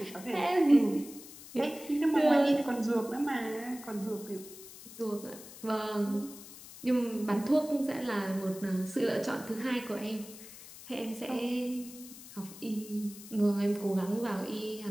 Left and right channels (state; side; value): noise; left; hiss, 16 dB below the sound